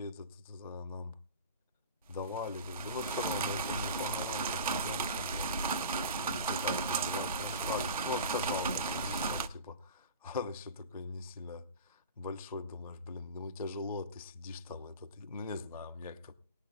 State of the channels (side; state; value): both; inverted; correlation -0.34